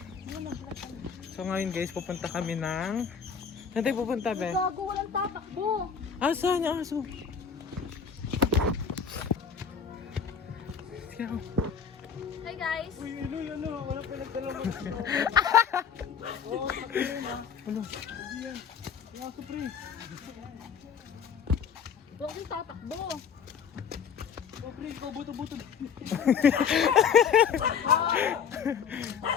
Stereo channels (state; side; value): quieter; right; 6.9 dB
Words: So ngayon guys, pupunta kami ng... Saan tayo pupunta, be? Gago, walang tatakbo. Saan yung aso? Hi guys. Uy, ano, wala pa nagdala mo. Oo, patuloy na. Ano? Hindi yan. Yung aso, pre. Huwag yung tatakbo. Oh, pre, ikaw buto-buto.